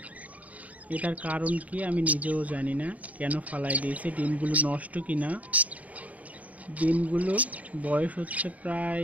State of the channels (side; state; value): left; late; 0.071 ms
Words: এটার কারণ কি আমি নিজেও জানি না, কেন ফালাই দিয়েছে। ডিমগুলো নষ্ট কিনা। ডিমগুলো বয়স হচ্ছে